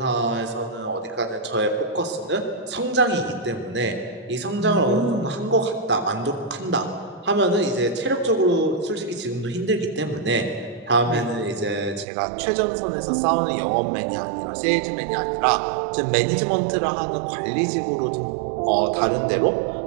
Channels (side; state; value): left; drops out; at 12.1 s